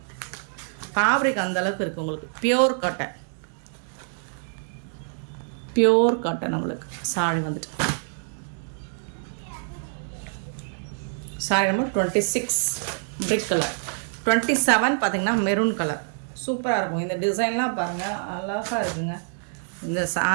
ஃபேப்ரிக் அந்தளவுக்கு இருக்குது உங்களுக்கு. பியோர் காட்டன், பியோர் காட்டன் உங்களுக்கு சாரி வந்துட்டு. Sari number 26 brick colour. 27 பார்த்தீங்கன்னா மெரூன் கலர். சூப்பராக இருக்கும். இந்த டிசைன்லாம் பாருங்கள், அழகாக இருக்குங்க. இந்த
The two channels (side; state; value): left; silent; digital silence